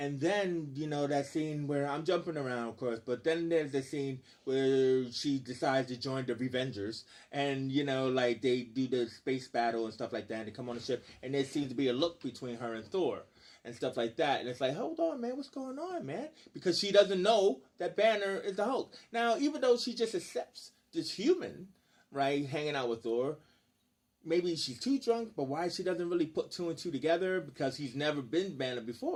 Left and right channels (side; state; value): both; identical; correlation 1.00